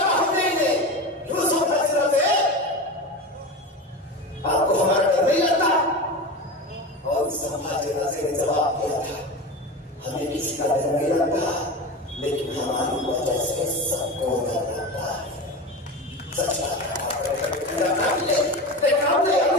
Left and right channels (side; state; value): both; normal; correlation 0.25